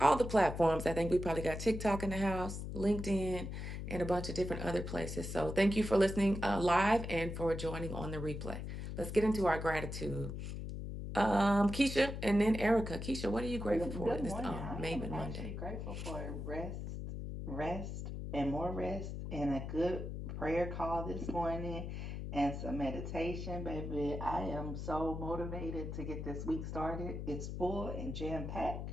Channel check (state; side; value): noise; left; hum, 6 dB below the sound